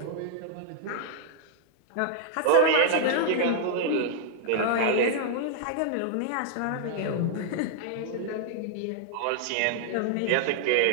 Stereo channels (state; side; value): different; both; correlation -0.01